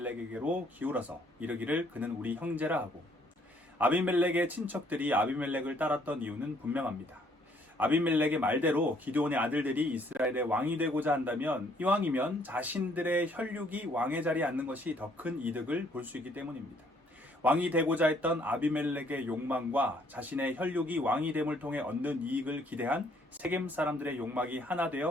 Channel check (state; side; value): normal; both; correlation 0.65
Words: 기울어서 이르기를 그는 우리 형제라 하고, 아비멜렉의 친척들이 아비멜렉을 따랐던 이유는 분명합니다. 아비멜렉의 말대로 기드온의 아들들이 이스라엘의 왕이 되고자 한다면 이왕이면 자신들의 혈육이 왕의 자리에 앉는 것이 더 큰 이득을 볼 수 있기 때문입니다. 왕이 되고자 했던 아비멜렉의 욕망과 자신의 혈육이 왕이 됨을 통해 얻는 이익을 기대한 세겜 사람들의 욕망이 하나